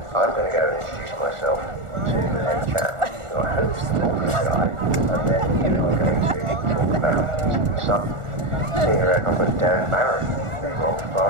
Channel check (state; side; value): late; left; 1.4 ms